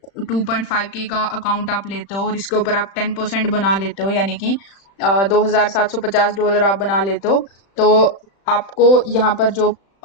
2.5K का अकाउंट आप लेते हो और इसके ऊपर आप 10% बना लेते हो, यानी कि $2,750 आप बना लेते हो, तो आपको यहाँ पर जो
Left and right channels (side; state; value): right; late; 35 ms